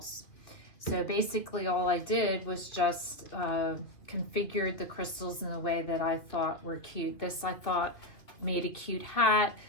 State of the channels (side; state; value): right; late; 2.7 ms